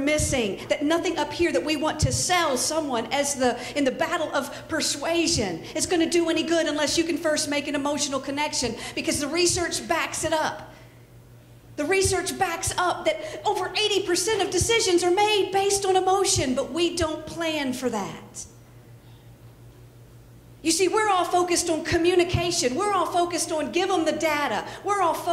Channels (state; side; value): identical; both; correlation 1.00